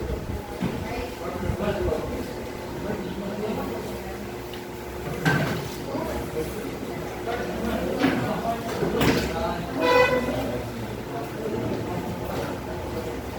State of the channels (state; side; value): identical; both; correlation 1.00